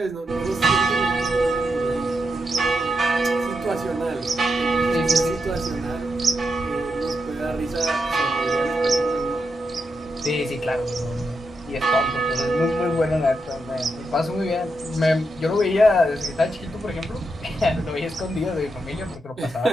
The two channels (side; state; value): both; normal; correlation 0.84